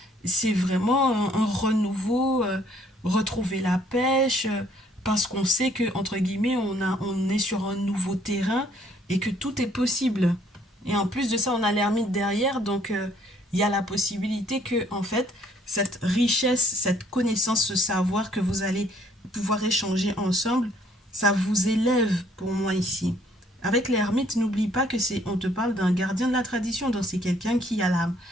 C'est vraiment un renouveau, retrouver la pêche, parce qu'on sait que, entre guillemets, on est sur un nouveau terrain et que tout est possible. Et en plus de ça, on a l'ermite derrière, donc il y a la possibilité que, en fait, cette richesse, cette connaissance, ce savoir que vous allez pouvoir échanger ensemble, ça vous élève pour moi ici. Avec l'ermite, n'oublie pas que on te parle d'un gardien de la tradition, donc c'est quelqu'un qui a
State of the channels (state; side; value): normal; both; correlation 0.63